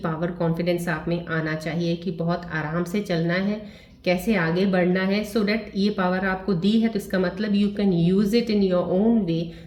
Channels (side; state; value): both; identical; correlation 1.00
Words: कॉन्फिडेंस आप में आना चाहिए कि बहुत आराम से चलना है, कैसे आगे बढ़ना है। सो डैट ये पावर आपको दी है तो इसका मतलब you can use it in your own way,